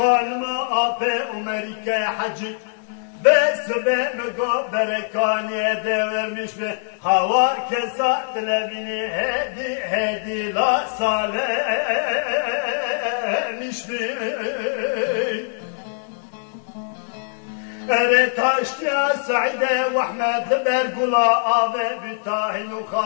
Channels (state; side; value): silent; right; digital silence